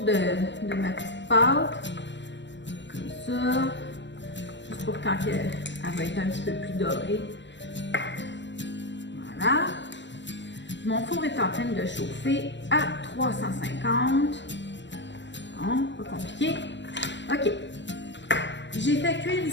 de ma petite pâte, comme ça, juste pour quand elle va être un petit peu plus dorée. Voilà. Mon four est en train de chauffer à 350. Bon, pas compliqué. OK. J'ai fait cuire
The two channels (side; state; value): right; late; 0.53 ms